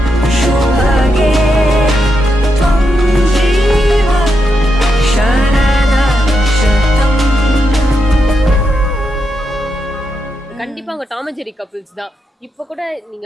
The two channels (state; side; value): normal; both; correlation 0.84